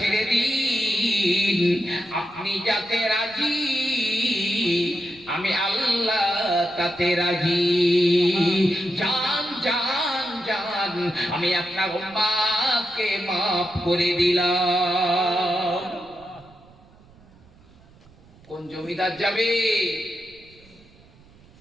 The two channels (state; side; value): noise; right; rumble, 26 dB below the sound